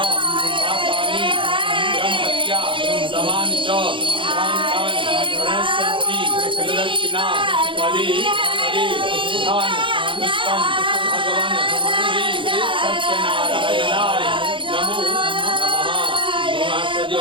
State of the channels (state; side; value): late; left; 0.25 ms